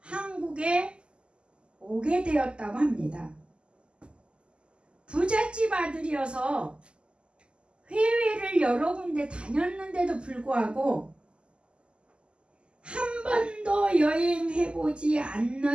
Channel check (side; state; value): left; late; 0.051 ms